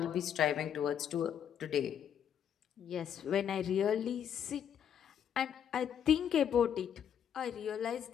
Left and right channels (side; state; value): right; quieter; 8.9 dB